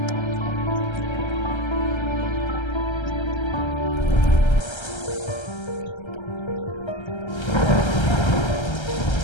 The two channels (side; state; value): right; late; 1.3 ms